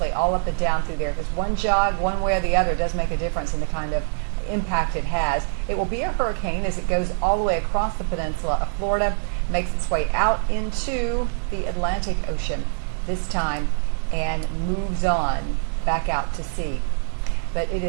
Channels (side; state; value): left; silent; digital silence